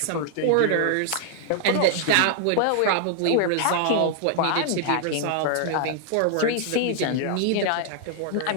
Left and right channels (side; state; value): both; different; correlation 0.00